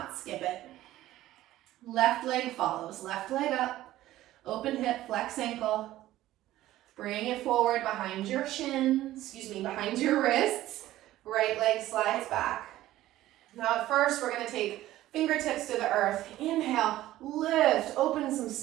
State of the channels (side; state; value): left; quieter; 14.9 dB